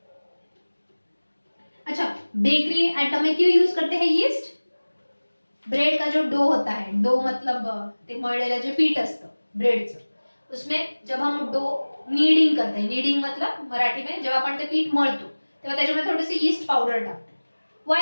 अच्छा, bakery item में क्यों use करते हैं यीस्ट? ब्रेड का जो dough होता है, dough मतलब ते मळलेलं जे पीठ असतं ब्रेडचं, उसमें जब हम डो नीडिंग करते हैं, नीडिंग मतलब मराठी में जब आपण ते पीठ मळतो तेव्हा त्याच्यामध्ये थोडीशी यीस्ट पाउडर टाकते.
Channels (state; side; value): inverted; both; correlation -1.00